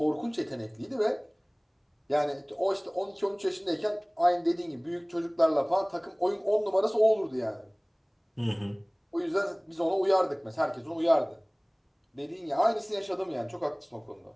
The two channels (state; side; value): identical; both; correlation 1.00